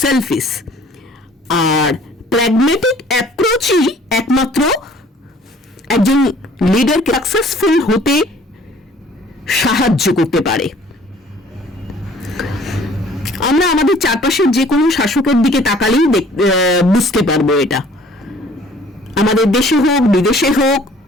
সেলফিশ। আর প্র্যাগম্যাটিক অ্যাপ্রোচই একমাত্র একজন লিডারকে সাকসেসফুল হতে সাহায্য করতে পারে। আমরা আমাদের চারপাশের যে কোনো শাসকের দিকে তাকালেই বুঝতে পারবো এটা। আমাদের দেশে হোক, বিদেশে হোক,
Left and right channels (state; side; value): normal; both; correlation 0.54